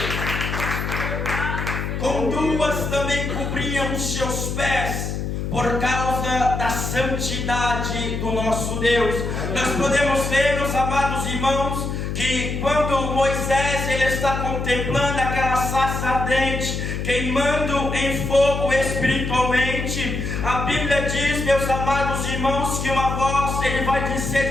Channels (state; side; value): noise; left; hum, 3 dB below the sound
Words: o com 2 também cobriam os seus pés, por causa da santidade do nosso Deus. Nós podemos ver, meus amados irmãos, que quando Moisés ele está contemplando aquela sarça ardente, queimando em fogo espiritualmente, a Bíblia diz, meus amados irmãos, que uma voz ele vai ser